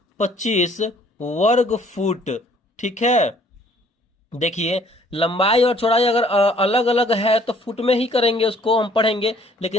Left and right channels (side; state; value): both; normal; correlation 0.59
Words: वर्ग फुट। ठीक है, देखिए लंबाई और चौड़ाई अगर अलग अलग है तो फुट में ही करेंगे, उसको हम पढ़ेंगे।